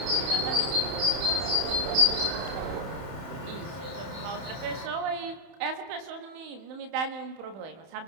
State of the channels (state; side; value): late; left; 31 ms